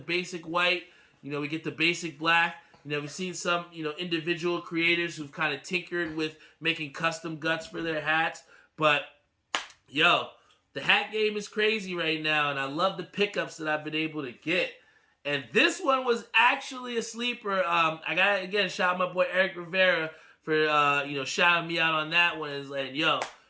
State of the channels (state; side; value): identical; both; correlation 1.00